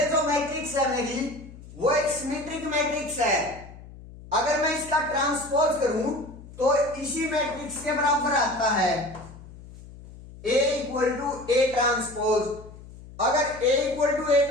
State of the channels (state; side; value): noise; left; hum, 17 dB below the sound